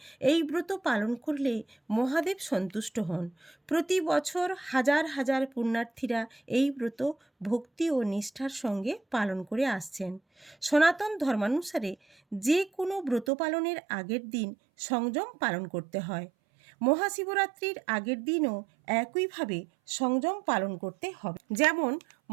এই ব্রত পালন করলে মহাদেব সন্তুষ্ট হন। প্রতি বছর হাজার হাজার পুণ্যার্থীরা এই ব্রত ভক্তি ও নিষ্ঠার সঙ্গে পালন করে আসছেন। সনাতন ধর্মানুসারে যে কোনো ব্রত পালনের আগের দিন সংযম পালন করতে হয়। মহাশিবরাত্রির আগের দিনও একইভাবে সংযম পালন করতে হবে। যেমন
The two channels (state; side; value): drops out; left; at 13.3 s